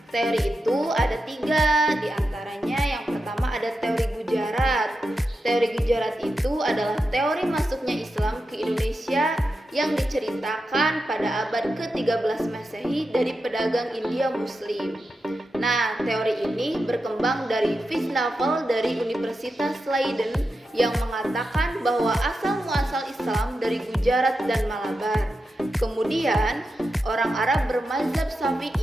Teori itu ada 3, diantaranya yang pertama ada teori Gujarat. Teori Gujarat itu adalah teori masuknya Islam ke Indonesia yang diceritakan pada abad ke-13 Masehi dari pedagang India Muslim. Nah, teori ini berkembang dari Visnaval dari Universitas Leiden yang mengatakan bahwa asal-muasal Islam dari Gujarat dan Malabar. Kemudian, orang Arab bermazhab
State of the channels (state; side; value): normal; both; correlation 0.89